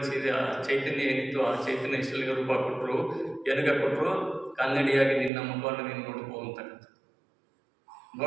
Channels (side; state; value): left; drops out; at 5.3 s